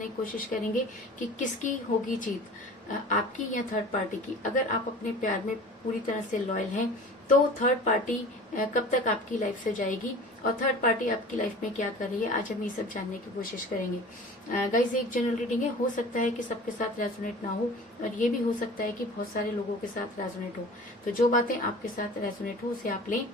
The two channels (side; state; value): both; normal; correlation 0.40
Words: की कोशिश करेंगे कि किसकी होगी जीत, आपकी या थर्ड पार्टी की। अगर आप अपने प्यार में पूरी तरह से लॉयल हैं तो थर्ड पार्टी कब तक आपकी लाइफ से जाएगी और थर्ड पार्टी आपकी लाइफ में क्या कर रही है, आज हम ये सब जानने की कोशिश करेंगे। गाइस, एक जनरल रीडिंग है, हो सकता है कि सबके साथ रेजोनेट ना हो और ये भी हो सकता है कि बहुत सारे लोगों के साथ रेजोनेट हो। तो जो बातें आपके साथ रेजोनेट हो उसे आप लें